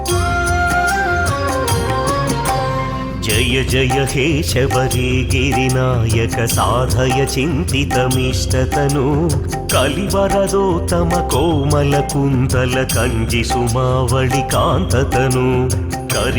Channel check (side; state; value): both; identical; correlation 1.00